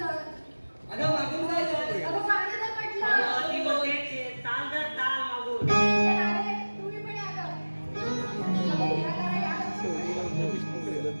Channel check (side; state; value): both; inverted; correlation -1.00